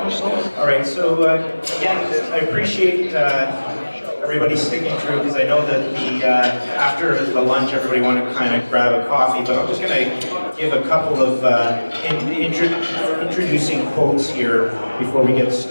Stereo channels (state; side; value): inverted; both; correlation -1.00